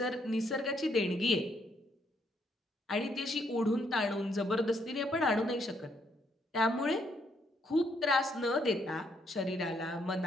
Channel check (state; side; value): normal; both; correlation 0.73